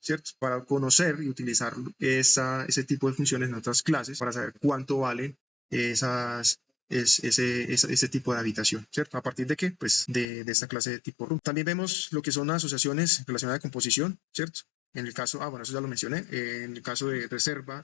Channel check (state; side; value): drops out; right; at 10.2 s